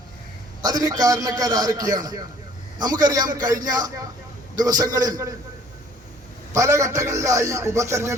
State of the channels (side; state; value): both; normal; correlation 0.55